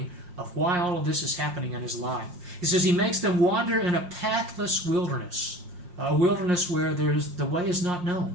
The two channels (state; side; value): late; left; 5.6 ms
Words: of why all of this is happening in his life. He says he makes them wander in a pathless wilderness, a wilderness where the way is not known.